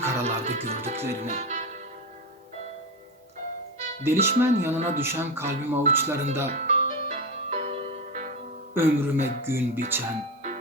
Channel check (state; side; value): normal; both; correlation 0.18